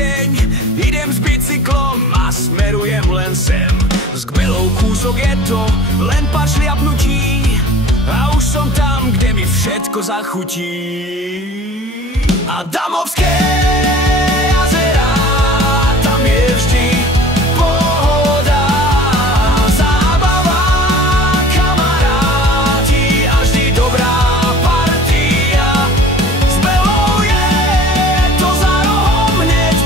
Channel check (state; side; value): normal; both; correlation 0.44